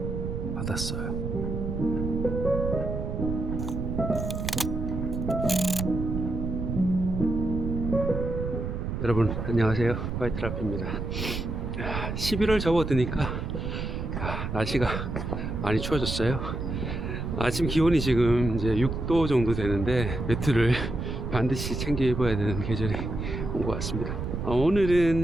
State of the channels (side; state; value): right; noise; rumble, 4 dB below the sound